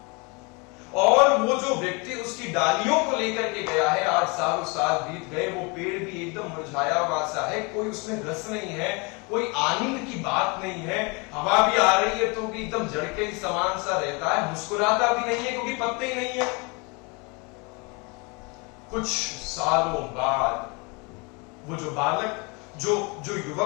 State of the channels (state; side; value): quieter; right; 29.9 dB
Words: और वो जो व्यक्ति उसकी डालियों को लेकर के गया है, आज सालों साल बीत गए, वो पेड़ भी एकदम मुरझाया हुआ सा है, कोई उसमें रस नहीं है, कोई आनंद की बात नहीं है। हवा भी आ रही है तो भी एकदम जड़ के ही समान सा रहता है, मुस्कुराता भी नहीं है क्योंकि पत्ते ही नहीं है। कुछ सालों बाद वो जो बालक, जो